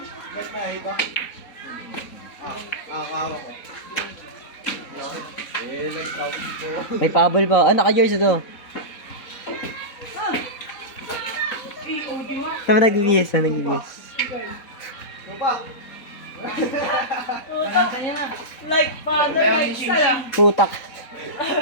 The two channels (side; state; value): right; late; 4.0 ms